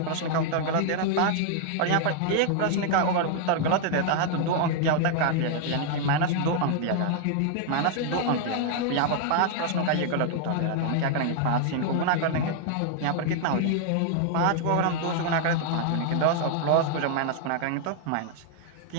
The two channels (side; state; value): both; different; correlation 0.00